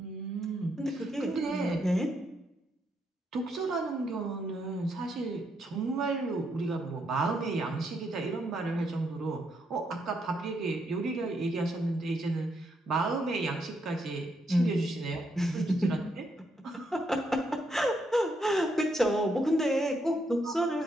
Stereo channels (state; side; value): normal; both; correlation 0.77